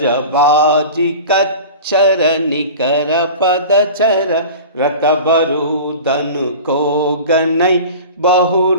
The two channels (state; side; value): inverted; both; correlation -0.35